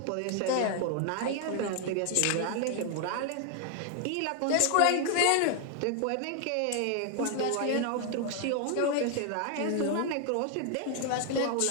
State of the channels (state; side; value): different; both; correlation 0.00